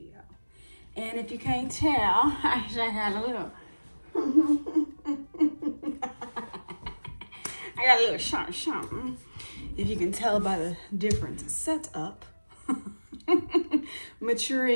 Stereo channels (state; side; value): inverted; both; correlation -1.00